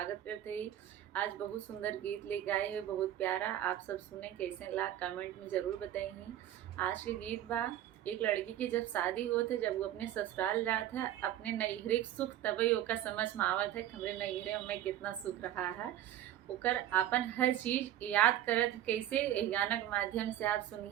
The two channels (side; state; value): left; quieter; 12.3 dB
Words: करते ही। आज बहुत सुंदर गीत लेके आए हैं, बहुत प्यारा। आप सब सुने कैसे ला कमेंट में ज़रूर बताइए। आज के गीत बा, एक लड़की की जब शादी होत है, जब वो अपने ससुराल जात है, अपने नैहरे के सुख तभी ओका समझ में आवत है हमरे नैहरे में कितना सुख रहा है। ओकर अपन हर चीज़ याद करत है। कैसे ए गाना के माध्यम से आप